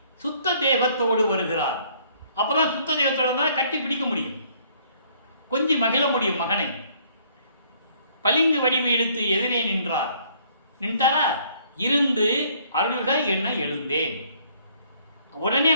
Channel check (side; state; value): both; inverted; correlation -0.62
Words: சுத்த தேகத்தோடு வருகிறார். அப்போ தான் சுத்த தேகத்தோடு தான் கட்டி பிடிக்க முடியும், கொஞ்சம் மகிழ முடியும் மகனை. பளிங்கு வடிவு எடுத்து எதிரே நின்றார். நின்றாரா? இருந்து அருள்க என்ன எழுந்தேன். உடனே